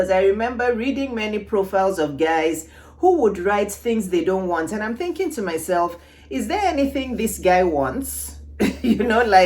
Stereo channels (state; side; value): identical; both; correlation 1.00